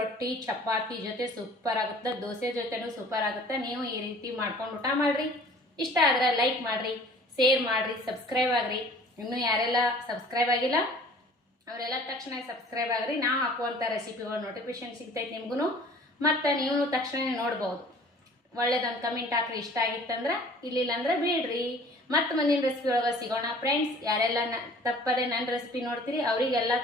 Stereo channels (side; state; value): both; normal; correlation 0.49